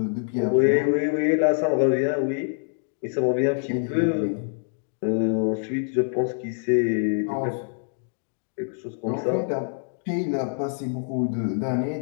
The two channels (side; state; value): right; silent; digital silence